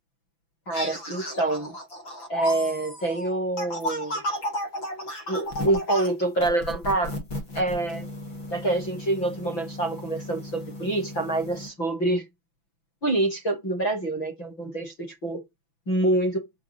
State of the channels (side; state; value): right; late; 6.0 ms